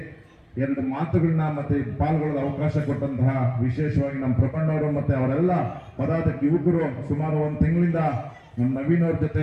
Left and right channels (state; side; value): identical; both; correlation 1.00